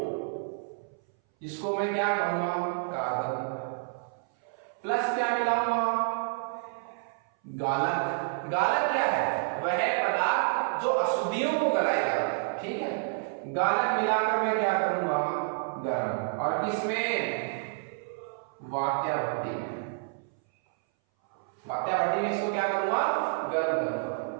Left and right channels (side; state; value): left; silent; 58 dB below the other